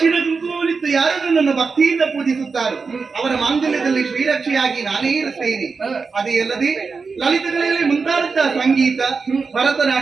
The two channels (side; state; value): left; quieter; 4.8 dB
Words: ಕುಂಕುಮವನ್ನಿತ್ತು ಯಾರು ನನ್ನನ್ನು ಭಕ್ತಿಯಿಂದ ಪೂಜಿಸುತ್ತಾರೋ ಅವರ ಮಾಂಗಲ್ಯದಲ್ಲಿ ಶ್ರೀರಕ್ಷೆಯಾಗಿ ನಾನೇ ಇರುತ್ತೇನೆ. ಅದೇ ಅಲ್ಲದೆ ಲಲಿತಗಳಲ್ಲಿ ಮುಂತಾದಂತಹ ಸಂಗೀತ,